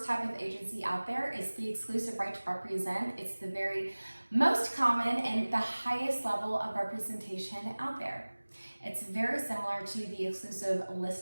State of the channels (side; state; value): both; inverted; correlation -1.00